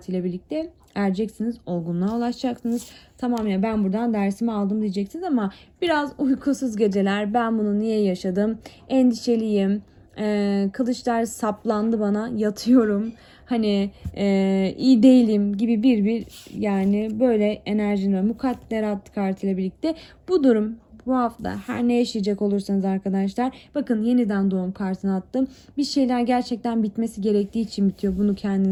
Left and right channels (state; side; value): identical; both; correlation 1.00